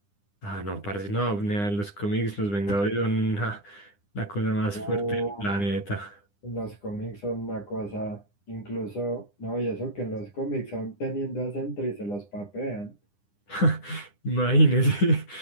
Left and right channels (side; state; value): right; late; 9.9 ms